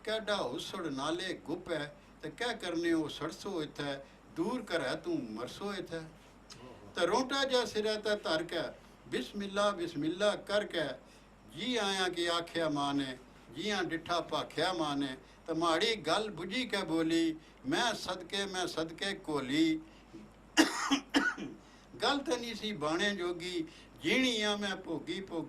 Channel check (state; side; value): identical; both; correlation 1.00